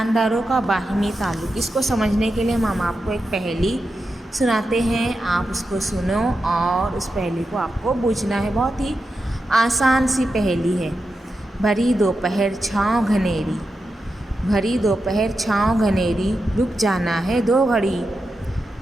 کا باہمی تعلق، اس کو سمجھنے کے لیے ہم آپ کو ایک پہیلی سناتے ہیں، آپ اس کو سنو اور اس پہیلی کو آپ کو بوجھنا ہے۔ بہت ہی آسان سی پہیلی ہے۔ بھری دوپہر چھاؤں گھنیری، بھری دوپہر چھاؤں گھنیری، رک جانا ہے 2 گھڑی،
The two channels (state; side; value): normal; both; correlation 0.89